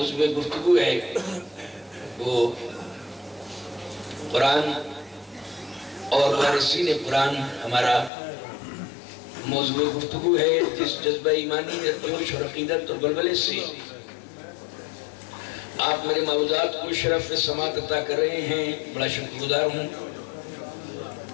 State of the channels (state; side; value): drops out; right; at 8.1 s